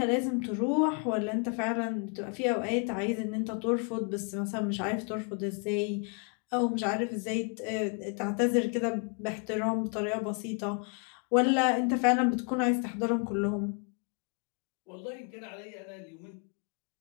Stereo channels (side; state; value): right; quieter; 38.3 dB